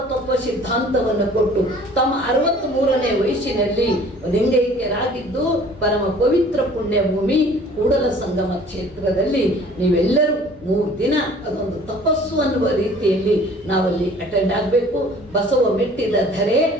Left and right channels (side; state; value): both; normal; correlation 0.51